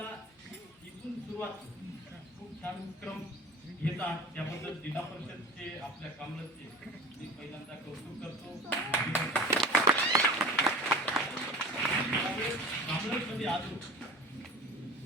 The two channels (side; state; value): both; normal; correlation 0.37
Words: इथून सुरुवात खूप छान क्रम घेतात. त्याबद्दल जिल्हा परिषदचे आपल्या कामरजचे मी पहिल्यांदा कौतुक करतो. कामरजमध्ये आलो,